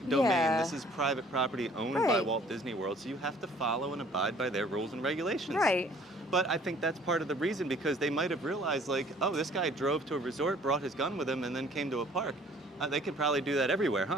domain. This is private property owned by Walt Disney World, so you have to follow and abide by their rules and regulations. Right. But I think that's part of the reason because they might have realized, like, oh, this guy drove to a resort, brought his gun with him, and then came to a park. They could probably do that everywhere,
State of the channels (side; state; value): both; normal; correlation 0.55